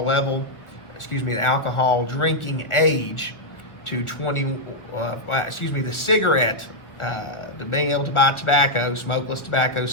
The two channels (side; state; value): right; late; 1.4 ms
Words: drinking age to 20, the cigarette, to being able to buy tobacco, smokeless tobacco,